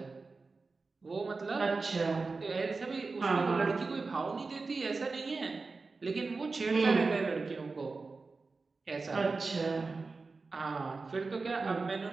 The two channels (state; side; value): quieter; left; 4.0 dB